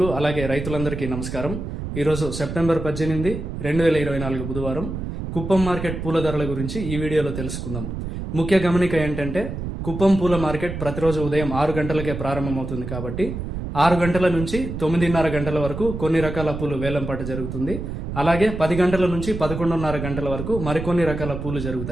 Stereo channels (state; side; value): noise; right; rumble, 6 dB below the sound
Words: అలాగే రైతులందరికీ నమస్కారం. ఈరోజు సెప్టెంబర్ 18, 2024 బుధవారం. కుప్పం మార్కెట్ పూల ధరల గురించి ఈ వీడియోలో తెలుసుకుందాం. ముఖ్య గమనిక ఏంటంటే, కుప్పం పూల మార్కెట్ ప్రతిరోజు ఉదయం 6 గంటలకే ప్రారంభమవుతుంది కాబట్టి 6 గంటల నుంచి 9:30 గంటల వరకు కొన్ని రకాల పూలు వేలంపాట జరుగుతుంది. అలాగే 10 గంటల నుంచి 11:30 గంటల వరకు మరికొన్ని రకాల పూలు